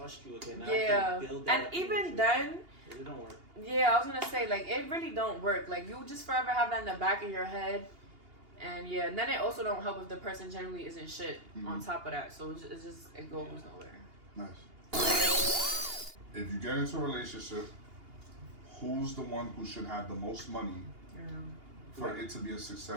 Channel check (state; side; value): late; left; 2.8 ms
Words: you again. I Yeah. can build that And up even with you. then. It don't work. Yeah, I was gonna say like it really don't work. Like you just forever have that in the back of your head, and yeah, and then it also don't help if the person generally isn't shit on top of that. So it goes nowhere. Nice. If you get into a relationship, who's the one who should have the most money for it to be a